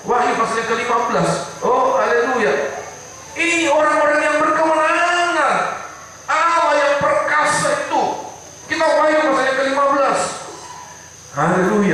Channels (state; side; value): identical; both; correlation 1.00